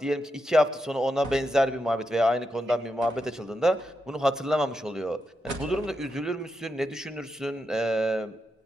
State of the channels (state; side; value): normal; both; correlation 0.85